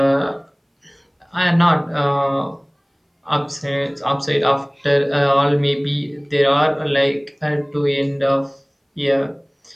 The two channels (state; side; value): identical; both; correlation 1.00